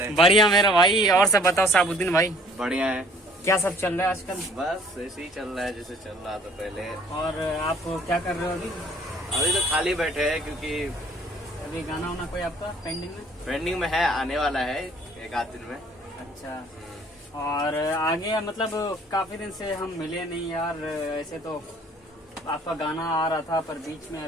बढ़िया मेरा भाई। और सब बताओ साबुद्दीन भाई। बढ़िया है। क्या सब चल रहा है आजकल? बस ऐसे ही चल रहा है जैसे चल रहा था पहले। और आप क्या कर रहे हो अभी? अभी तो खाली बैठे हैं क्योंकि अभी गाना वाना कोई आपका पेंडिंग में? पेंडिंग में है, आने वाला है एक आध दिन में। अच्छा। और आगे मतलब काफी दिन से हम मिले नहीं यार। ऐसे तो आपका गाना आ रहा था पर बीच में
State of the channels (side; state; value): both; normal; correlation 0.55